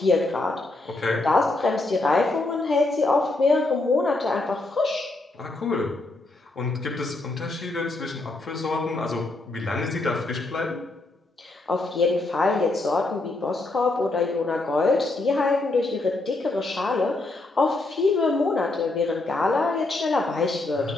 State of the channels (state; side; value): quieter; right; 3.0 dB